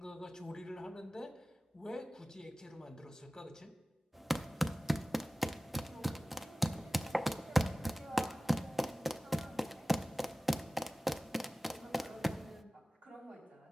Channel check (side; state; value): both; normal; correlation 0.97